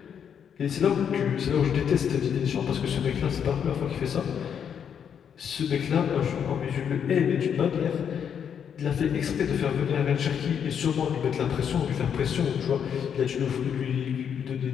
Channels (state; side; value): quieter; right; 8.0 dB